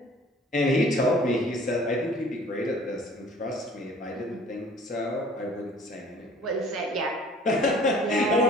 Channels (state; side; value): normal; both; correlation 0.51